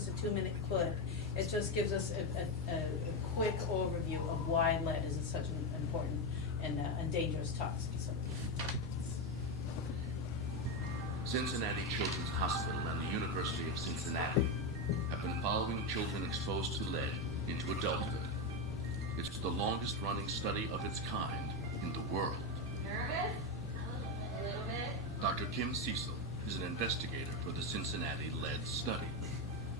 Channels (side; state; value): both; normal; correlation 0.10